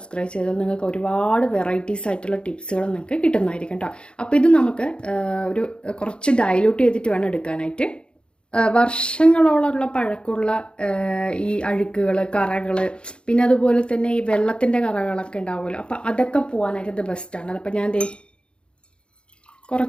ചെയ്താൽ നിങ്ങൾക്ക് ഒരുപാട് വെറൈറ്റീസ് ആയിട്ടുള്ള ടിപ്സുകൾ നിങ്ങൾക്ക് കിട്ടുന്നതായിരിക്കും കേട്ടോ. അപ്പോൾ ഇത് നമുക്ക് ഒരു കുറച്ച് ഡൈല്യൂട്ട് ചെയ്തിട്ട് വേണം എടുക്കാനായിട്ട്. വർഷങ്ങളോളമുള്ള പഴക്കമുള്ള ഈ അഴുക്കുകൾ, കറകൾ, പിന്നെ അതുപോലെ തന്നെ ഈ വെള്ളത്തിൻ്റെ കറകളൊക്കെ ഉണ്ടാവുമല്ലോ, അപ്പോൾ അതൊക്കെ പോകാനായിട്ട് ഇത് ബെസ്റ്റാണ്. അപ്പോൾ ഞാൻ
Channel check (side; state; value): right; late; 0.054 ms